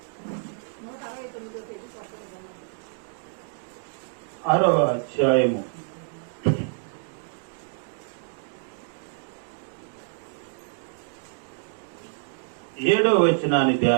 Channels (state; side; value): silent; left; 60 dB below the other